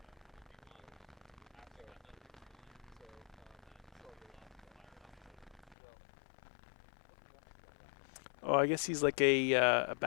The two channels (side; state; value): right; drops out; at 5.8 s